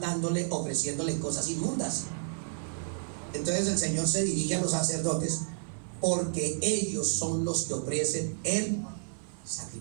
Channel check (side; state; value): left; silent; 57 dB below the other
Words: ofreciéndole cosas inmundas. Entonces el Señor se dirige a los sacerdotes, porque ellos son los que ofrecen el